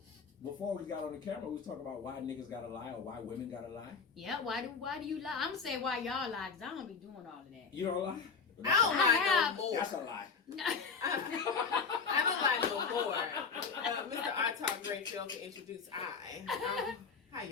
before we got on the camera, we was talking about why niggas gotta lie or why women gotta lie. Yeah, why do you lie? I'm gonna say why y'all lie, because I don't be doing all of that. You don't lie? I don't lie no more. That's a lie. I don't lie no more. Mr. I Talk Great failed to introduce I. Hi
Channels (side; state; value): right; quieter; 5.5 dB